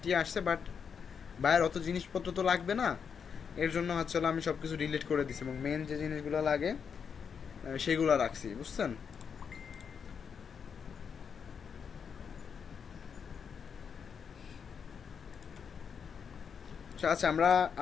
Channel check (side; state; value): right; quieter; 6.7 dB